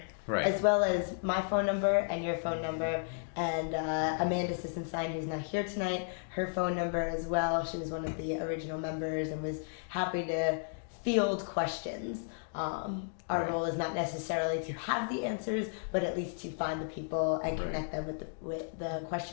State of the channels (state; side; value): silent; right; digital silence